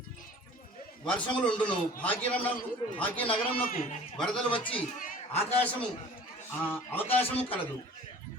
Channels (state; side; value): normal; both; correlation 0.46